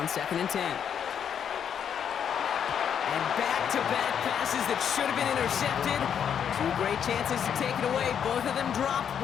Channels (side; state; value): right; quieter; 8.3 dB